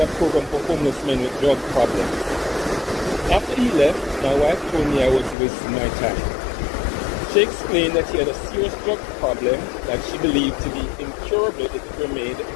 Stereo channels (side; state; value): right; drops out; at 5.4 s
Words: a program for homeless men with drug problems. After he left, my wife told me I was wasting my time. She explained that he had a serious drug problem that she believed to be incurable if it remained